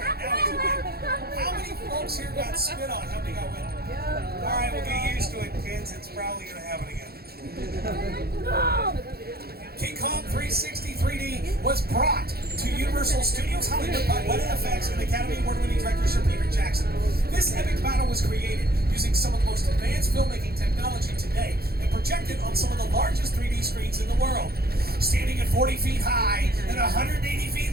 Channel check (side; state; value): left; late; 0.45 ms